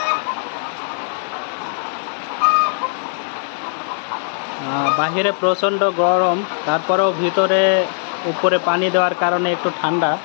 বাহিরে প্রচণ্ড গরম, তারপরেও ভিতরে উপরে পানি দেওয়ার কারণে একটু ঠান্ডা।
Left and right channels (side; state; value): right; silent; digital silence